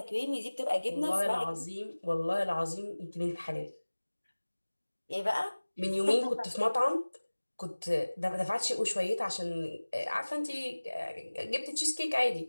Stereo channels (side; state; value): both; inverted; correlation -1.00